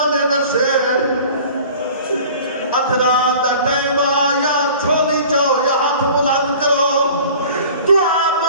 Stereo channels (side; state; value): both; inverted; correlation -0.45